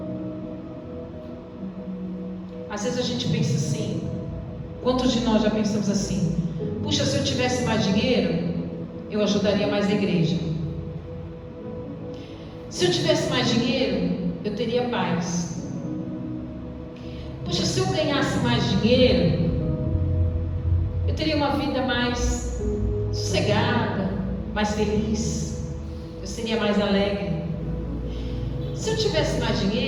Às vezes a gente pensa assim, quantos de nós já pensamos assim: puxa, se eu tivesse mais dinheiro, eu ajudaria mais a igreja. Se eu tivesse mais dinheiro, eu teria paz. Puxa, se eu ganhasse mais dinheiro, eu teria uma vida mais sossegada, mais feliz, eu seria mais alegre. Se eu tivesse mais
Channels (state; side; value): identical; both; correlation 1.00